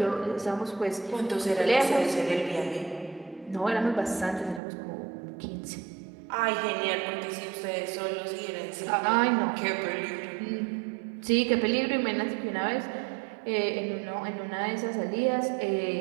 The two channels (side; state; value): left; drops out; at 4.6 s